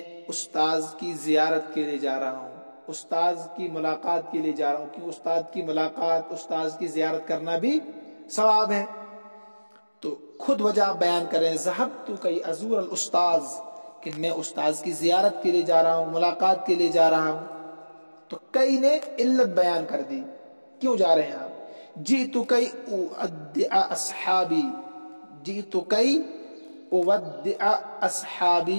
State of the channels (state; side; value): inverted; both; correlation -1.00